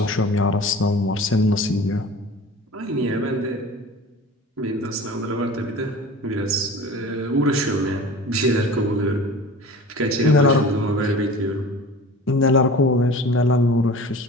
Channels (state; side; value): normal; both; correlation 0.39